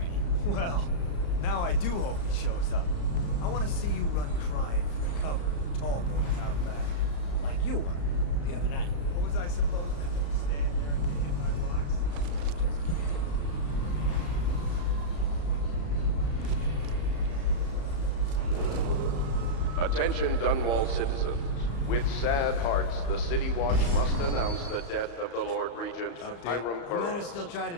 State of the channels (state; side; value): late; right; 35 ms